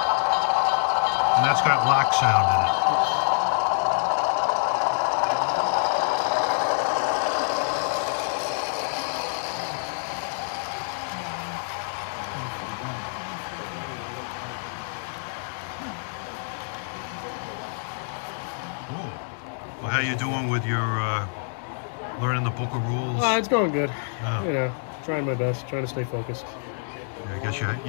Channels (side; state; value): right; silent; digital silence